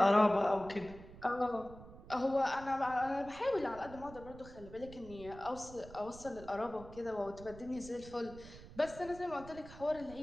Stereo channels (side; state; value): right; noise; rumble, 16 dB below the sound